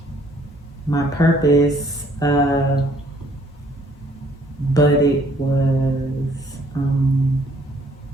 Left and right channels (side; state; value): both; normal; correlation 0.63